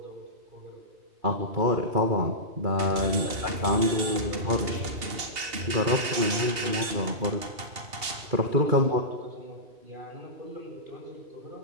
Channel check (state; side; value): late; left; 2.7 ms